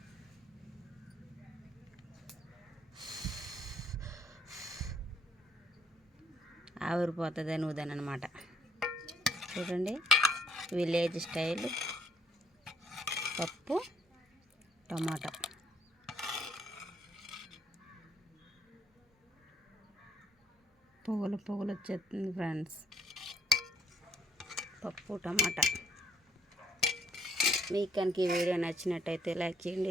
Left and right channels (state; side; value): normal; both; correlation 0.66